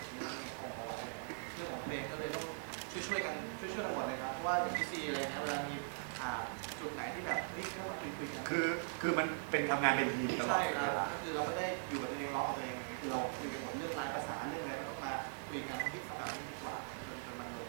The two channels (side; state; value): left; silent; 51 dB below the other